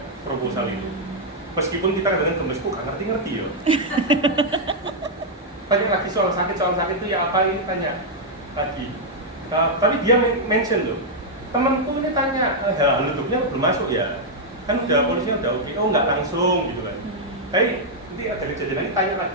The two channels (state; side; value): normal; both; correlation -0.04